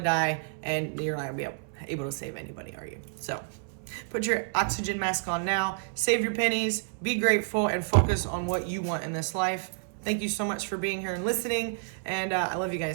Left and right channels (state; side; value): silent; left; 58 dB below the other